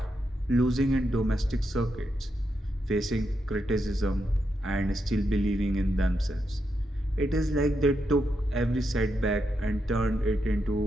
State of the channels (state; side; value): normal; both; correlation 0.83